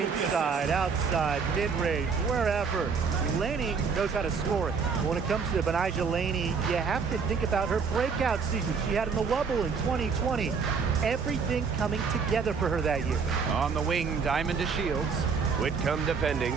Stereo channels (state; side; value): quieter; left; 5.6 dB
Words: outside, mid-range, wherever. Laney knows how to score it. When it comes to Benijah Laney, you have to think about her breakout season she had in the Wubble in 2020. Everything coming together for her that year. On the wing, Diamond to Shields. Whitcomb defending.